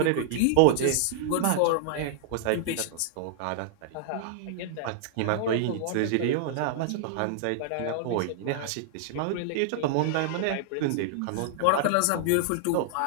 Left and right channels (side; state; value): both; different; correlation -0.01